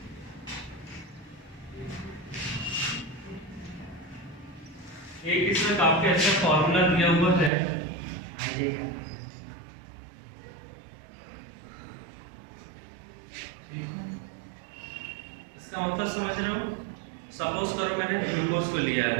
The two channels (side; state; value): left; drops out; at 7.5 s